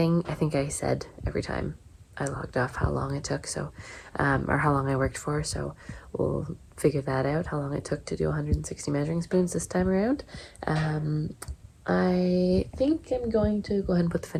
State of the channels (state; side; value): identical; both; correlation 1.00